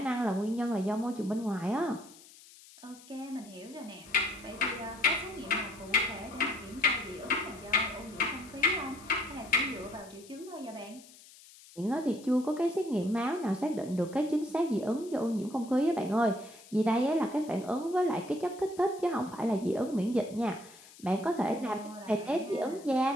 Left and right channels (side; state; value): left; noise; hiss, 21 dB below the sound